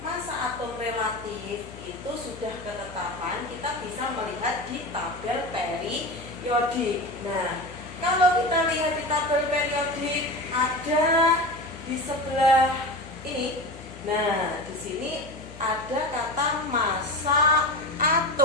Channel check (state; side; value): noise; left; hum, 16 dB below the sound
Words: masa atom relatif itu sudah ketetapan, kita bisa melihat di tabel periodik. Nah, kalau kita lihat di tabel periodik ada di sebelah ini. Nah, di sini ada kata massa